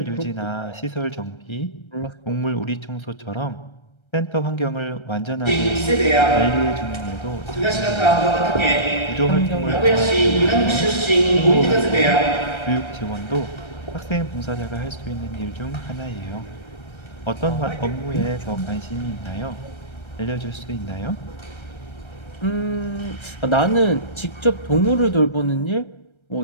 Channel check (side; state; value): right; late; 1.3 ms